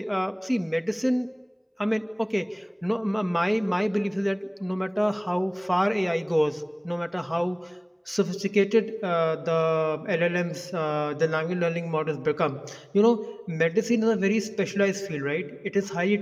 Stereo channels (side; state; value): both; identical; correlation 1.00